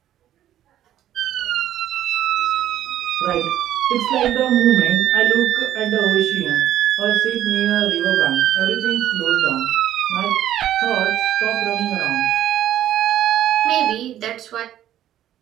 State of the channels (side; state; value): left; quieter; 12.0 dB